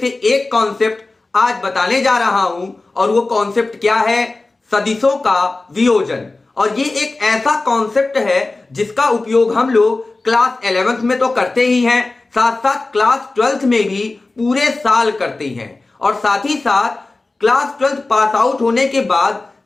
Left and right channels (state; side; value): quieter; right; 3.3 dB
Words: एक कॉन्सेप्ट आज बताने जा रहा हूं। और वो कॉन्सेप्ट क्या है? सदिशों का वियोजन। और ये एक ऐसा कॉन्सेप्ट है जिसका उपयोग हम लोग क्लास 11th में तो करते ही हैं, साथ साथ क्लास 12th में भी पूरे साल करते हैं। और साथ ही साथ क्लास 12th पास आउट होने के बाद